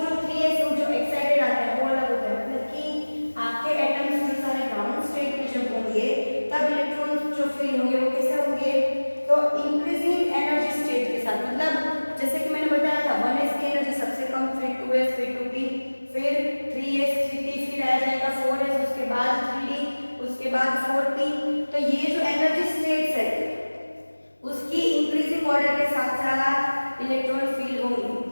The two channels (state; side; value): inverted; both; correlation -1.00